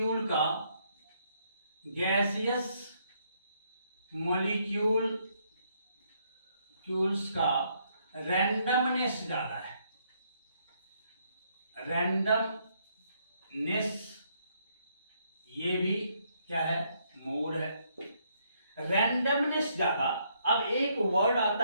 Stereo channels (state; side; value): inverted; both; correlation -0.72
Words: का रैंडमनेस ज्यादा है। रैंडमनेस ये भी क्या है, मोर है, रैंडमनेस ज्यादा। अब एक वर्ड